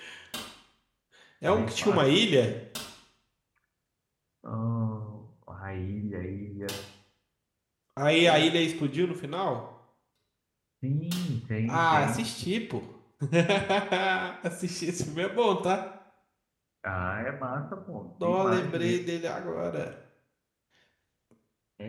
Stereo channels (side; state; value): both; identical; correlation 1.00